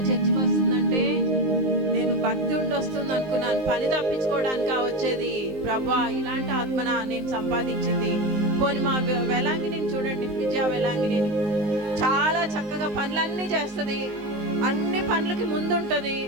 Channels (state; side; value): late; left; 19 ms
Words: చర్చికి వస్తుందంటే నేను భక్తి ఉండి వస్తుంది అనుకున్నాను. పని తప్పించుకోవడానికి వచ్చేది. ప్రభా, ఇలాంటి ఆత్మన నేను సంపాదించింది. పోనీ మా వెలాంగిని చూడండి, విజయ వెలాంగిని చాలా చక్కగా పనులన్నీ చేస్తుంది. అన్ని పనులకి ముందుంటుంది.